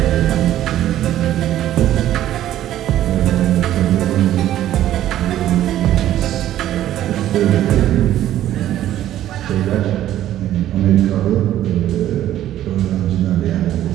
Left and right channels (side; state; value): left; quieter; 12.6 dB